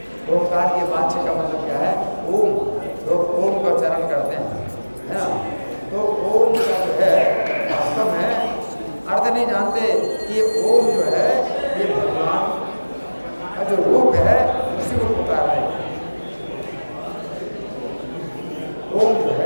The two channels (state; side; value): inverted; both; correlation -1.00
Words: ओंकार के वाच्य का मतलब क्या है? ओम। लोग ओम का उच्चारण करते हैं, है ना? तो ओम का जो है वास्तव में अर्थ नहीं जानते कि ओम जो है ये भगवान का जो रूप है उसी को पुकार रहे हैं। ओम जो